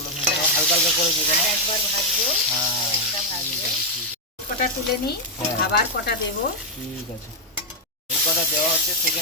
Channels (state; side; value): normal; both; correlation 0.01